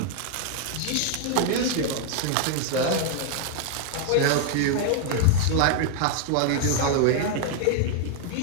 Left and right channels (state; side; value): different; both; correlation 0.00